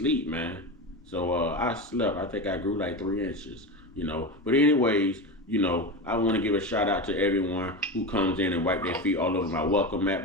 man. So I slept. I think I grew like 3 inches. But anyways, I want to give a shout out to everyone who comes in and wipe their feet all over my welcome mat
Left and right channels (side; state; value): both; normal; correlation 0.21